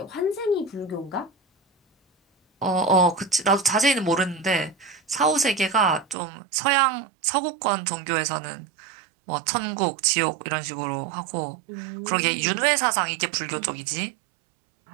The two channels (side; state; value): left; drops out; at 6.2 s